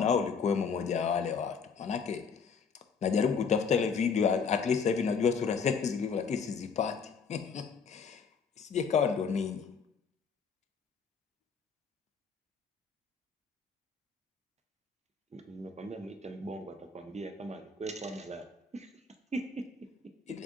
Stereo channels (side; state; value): right; quieter; 5.7 dB